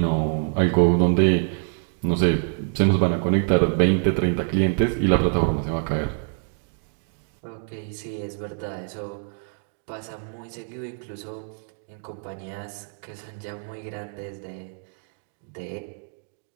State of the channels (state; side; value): silent; left; digital silence